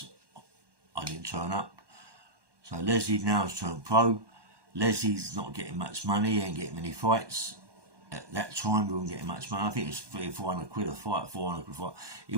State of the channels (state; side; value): late; left; 1.2 ms